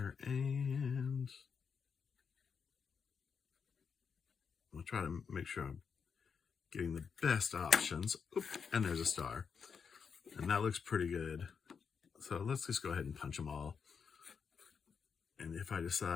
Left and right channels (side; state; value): right; quieter; 6.3 dB